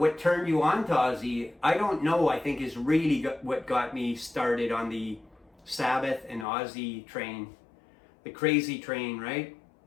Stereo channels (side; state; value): right; drops out; at 6.5 s